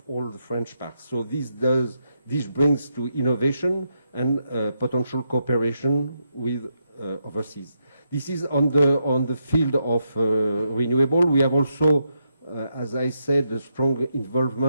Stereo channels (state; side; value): inverted; both; correlation -0.82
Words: all the French parks. So this brings to innovation and potential cooperation with overseas. This is on the field of renewable. We have also, as I said, a strong